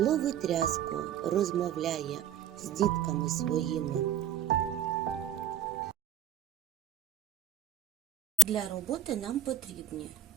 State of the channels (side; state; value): left; quieter; 7.5 dB